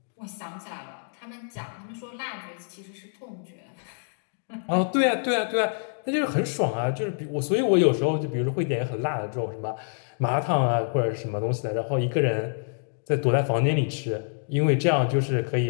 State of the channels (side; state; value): right; silent; digital silence